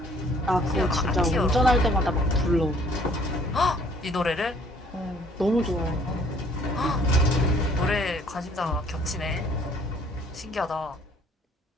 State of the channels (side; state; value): both; normal; correlation 0.59